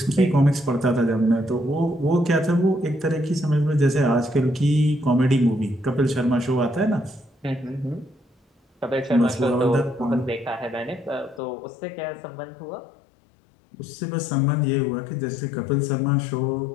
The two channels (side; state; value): right; drops out; at 11.4 s